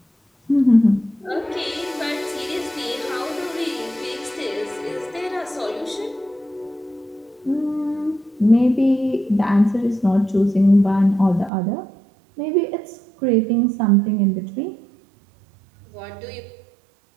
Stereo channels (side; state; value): left; drops out; at 11.5 s